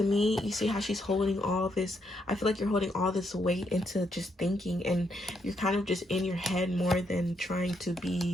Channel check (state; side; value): normal; both; correlation 0.77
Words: me, you see how she's holding all this, I feel like you're holding all this weight into just thinking, and you're kind of just in your head more than trying to